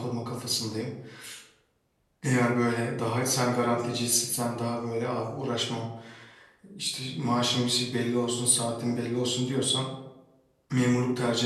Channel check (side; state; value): both; identical; correlation 1.00